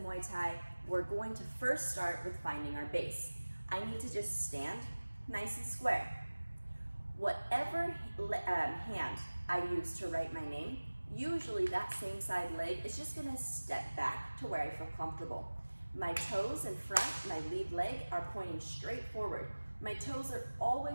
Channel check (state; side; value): inverted; both; correlation -1.00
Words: Thai, we're going to first start with finding our base. I need to just stand nice and square. Whatever hand I use to write my name, usually that same side leg is just gonna step back to where I feel comfortable. My toes in front, my lead leg, are pointing straight forward. My toes are